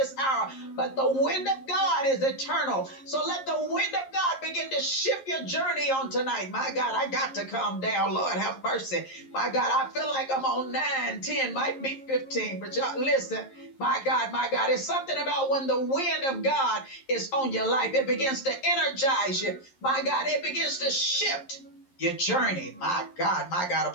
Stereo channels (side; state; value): right; late; 11 ms